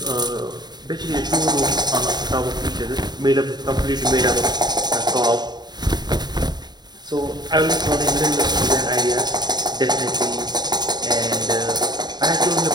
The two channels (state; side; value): late; left; 0.20 ms